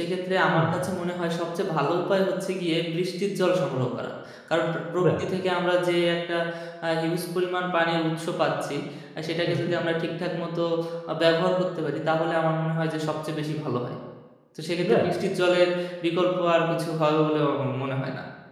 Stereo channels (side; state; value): both; identical; correlation 1.00